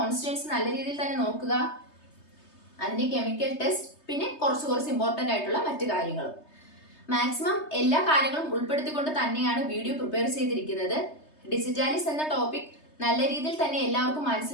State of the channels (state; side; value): late; right; 3.3 ms